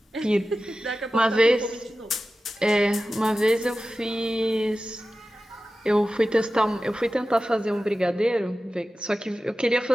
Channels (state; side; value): normal; both; correlation 0.95